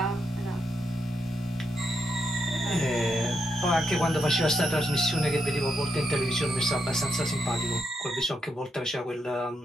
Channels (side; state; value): both; normal; correlation 0.81